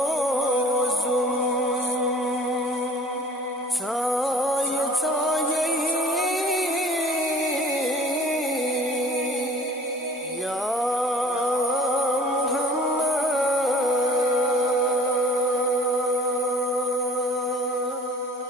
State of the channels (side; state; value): both; normal; correlation 0.49